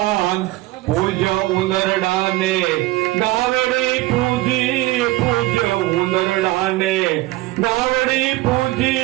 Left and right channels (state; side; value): quieter; left; 18.8 dB